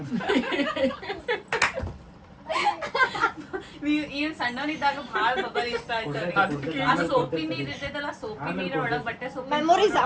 ಈ ಸಣ್ಣವನಿದ್ದಾಗ ಭಾಳ ಬಬ್ಬಲ್ ಇಷ್ಟ ಆಯ್ತು. ಆ ಸೋಪಿ ನೀರ್ ಇರ್ತೈತಲ್ಲ, ಸೋಪಿ ನೀರ್ ಒಳಗ್ ಬಟ್ಟೆ ಸೋಪಿ ಮೆಮೊರೀಸ್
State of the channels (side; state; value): both; identical; correlation 1.00